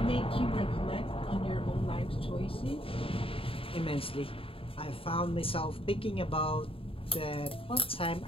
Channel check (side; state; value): right; late; 0.27 ms